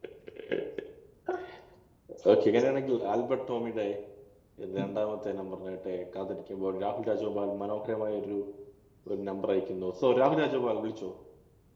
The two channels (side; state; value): both; identical; correlation 1.00